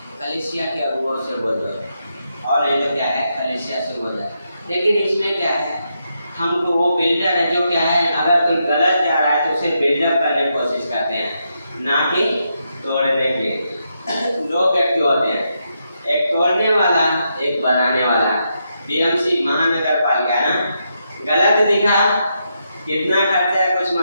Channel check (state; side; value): inverted; both; correlation -0.82